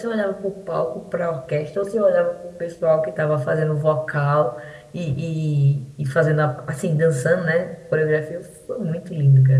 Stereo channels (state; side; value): identical; both; correlation 1.00